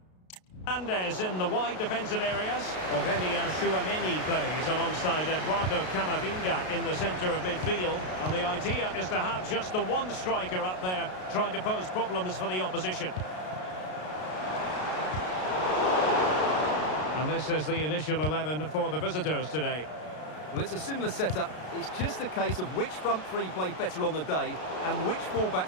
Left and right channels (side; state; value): right; late; 33 ms